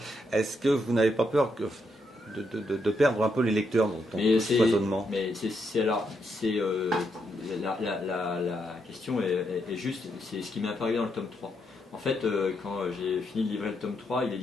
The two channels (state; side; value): normal; both; correlation 0.79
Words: Est-ce que vous n'avez pas peur de perdre un peu les lecteurs dans ce foisonnement? Mais la question est juste, c'est ce qui m'est apparu dans le tome 3. En fait, quand j'ai fini de livrer le tome 3,